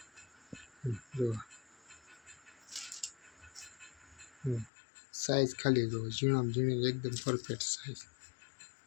જો સાઈઝ ખાલી જો ઝીણામાં ઝીણી એકદમ પરફેક્ટ સાઈઝ।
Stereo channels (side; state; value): right; drops out; at 4.7 s